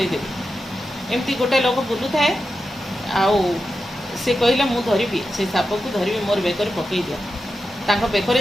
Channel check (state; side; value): normal; both; correlation 0.90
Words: ଏମିତି ଗୋଟେ ଲୋକ ବୁଲୁଥାଏ, ଆଉ ସେ କହିଲେ ମୁଁ ଧରିବି, ସେ ସାପକୁ ଧରିବି, ମୋର ବେକରେ ପକାଇ ଦିଅ। ତାଙ୍କ ବେକରେ